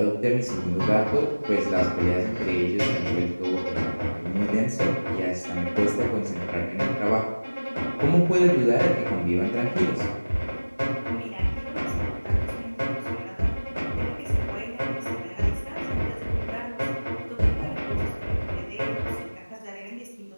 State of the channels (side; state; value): both; inverted; correlation -1.00